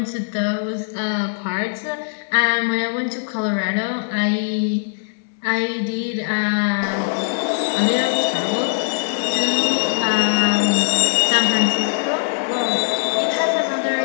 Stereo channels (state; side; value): silent; right; 62 dB below the other